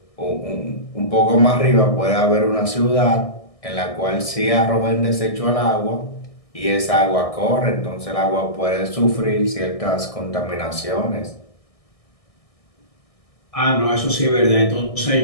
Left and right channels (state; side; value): late; right; 1.6 ms